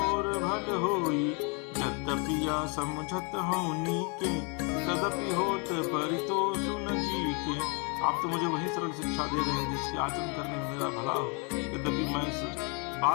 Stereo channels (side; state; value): right; quieter; 34.1 dB